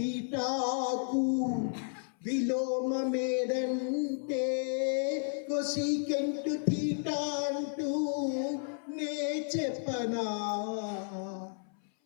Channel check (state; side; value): silent; right; 56 dB below the other